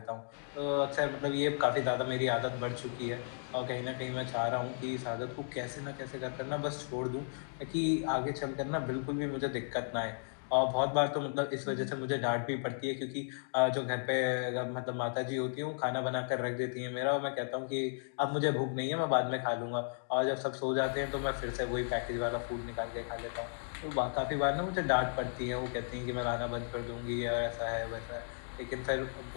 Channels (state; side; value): silent; right; digital silence